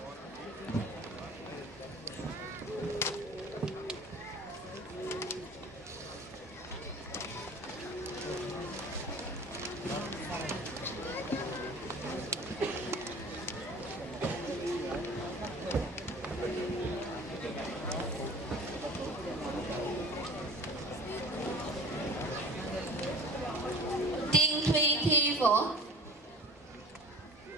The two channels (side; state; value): both; normal; correlation 0.41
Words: Tiên Thùy Thi Võ,